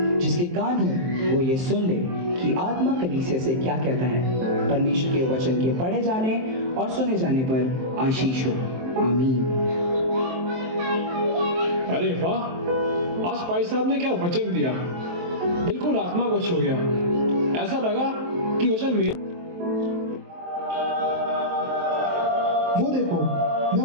जिसके कान हो वो ये सुन ले कि आत्मा कलीसिया से क्या कहता है। परमेश्वर के वचन के पढ़े जाने और सुने जाने पर आशीष हो। आमीन। अरे वाह, आज भाई साहब ने क्या वचन दिया, बिल्कुल आत्मा को छू गया। ऐसा लगा कि वचन मेरा। वो देखो, मैं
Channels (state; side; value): late; left; 23 ms